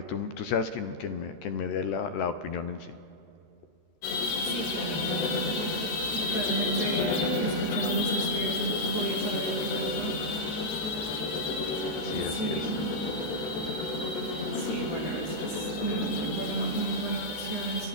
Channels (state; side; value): late; right; 14 ms